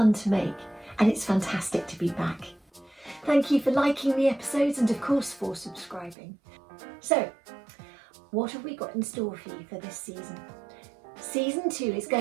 to make and it's fantastic to be back. Thank you for liking the episodes and of course for subscribing. So, what have we got in store for you for this season? Season 2 is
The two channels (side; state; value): left; drops out; at 6.2 s